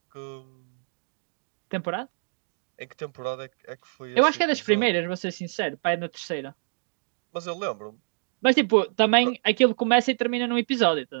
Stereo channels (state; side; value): silent; left; digital silence